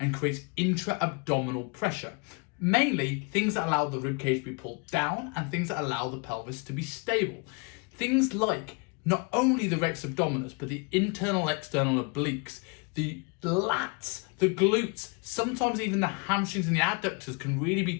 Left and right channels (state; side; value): quieter; right; 30.9 dB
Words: creates intra-abdominal pressure. Mainly things that allow the ribcage to be pulled down and things that allow the pelvis to be stable. Things like not only the rex abdominis, but the internal external obliques, the lats, the glutes, sometimes even the hamstrings and the adductors can really be